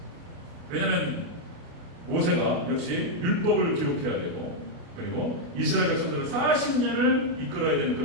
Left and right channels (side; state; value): left; late; 28 ms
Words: 왜냐하면 모세가 역시 율법을 기록해야 되고, 그리고 이스라엘 백성들을 40년을 이끌어야 되는